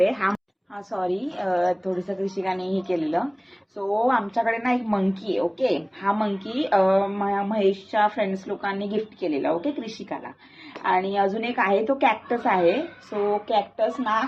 हा सॉरी, थोडस कृषिकाने हे केलेलं. सो आमच्याकडे ना एक मंकी आहे. ओके, हा मंकी महेशच्या फ्रेंड्स लोकांनी गिफ्ट केलेला. ओके कृषिकाला. आणि अजून एक आहे तो कॅक्टस आहे. सो कॅक्टस ना,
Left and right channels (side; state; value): both; identical; correlation 1.00